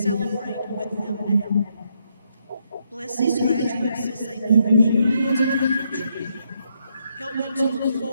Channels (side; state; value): both; inverted; correlation -0.76